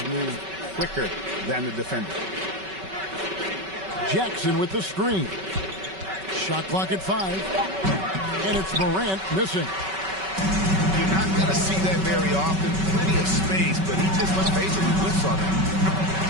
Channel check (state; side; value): late; left; 5.3 ms